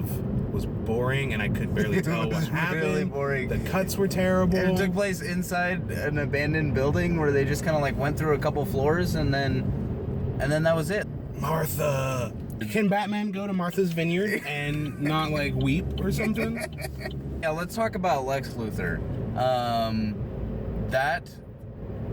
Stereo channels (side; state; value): both; identical; correlation 1.00